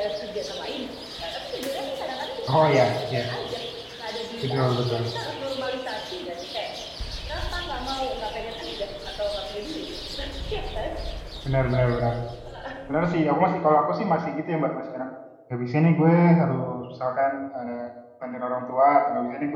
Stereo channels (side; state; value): both; identical; correlation 1.00